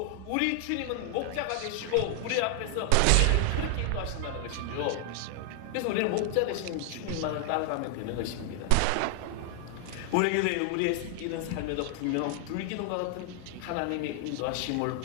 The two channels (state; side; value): different; both; correlation 0.00